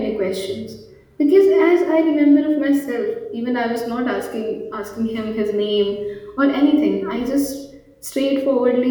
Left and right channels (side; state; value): both; identical; correlation 1.00